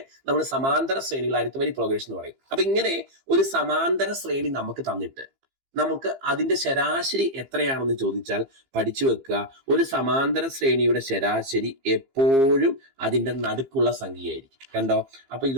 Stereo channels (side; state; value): left; late; 15 ms